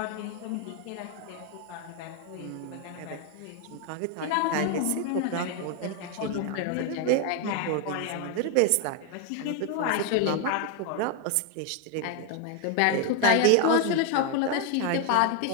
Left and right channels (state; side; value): different; both; correlation 0.00